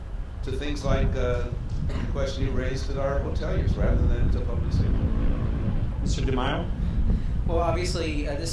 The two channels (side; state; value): both; identical; correlation 1.00